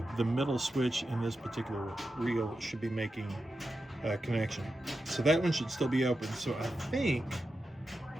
middle switch in this particular reel should be making a connection. So that one should still be open. So I think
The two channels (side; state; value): both; normal; correlation 0.90